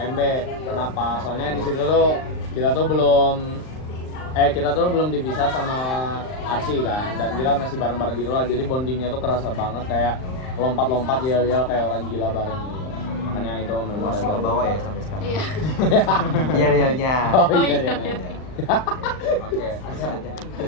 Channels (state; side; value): late; right; 39 ms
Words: Kenapa? Soalnya di situ tuh kita tuh belum dipisah sama Arsi kan, dan kita masih bareng-bareng gitu lah. Jadi bondingnya tuh kerasa banget, kayak lompat-lompat yel-yel kayak orang gila bareng gitu. Makanya itu memorable. masih ke bawah ya sampai sekarang. Iya. Iya. Oh iya. Oke,